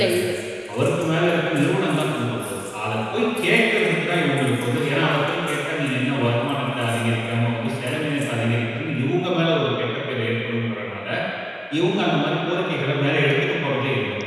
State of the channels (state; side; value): identical; both; correlation 1.00